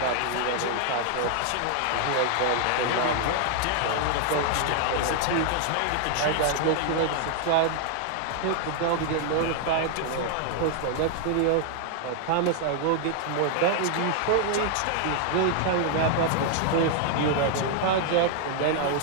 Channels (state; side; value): different; both; correlation 0.00